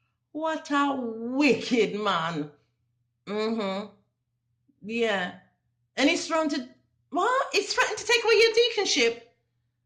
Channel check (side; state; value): both; identical; correlation 1.00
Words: What a wicked man. Yeah. And he's threatened to, what? He's threatened to take away your deaconship.